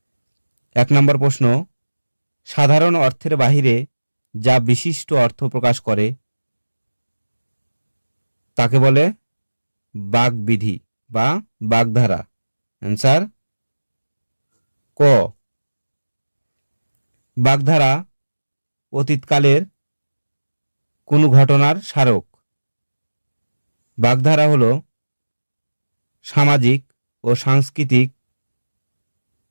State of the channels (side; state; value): both; inverted; correlation -1.00